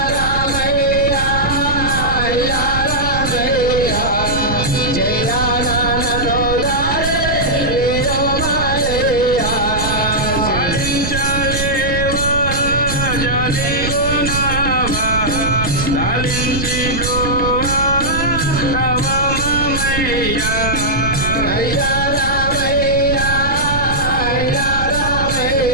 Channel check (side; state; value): right; noise; rumble, 5 dB below the sound